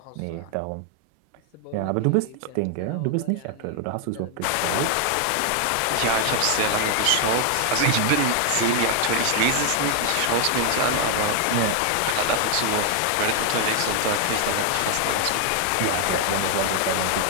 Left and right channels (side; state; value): both; different; correlation 0.00